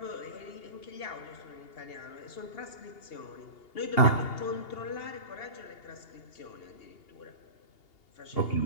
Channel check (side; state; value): right; late; 2.8 ms